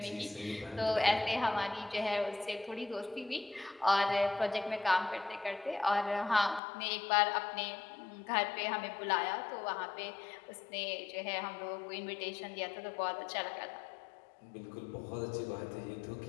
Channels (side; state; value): right; drops out; at 6.6 s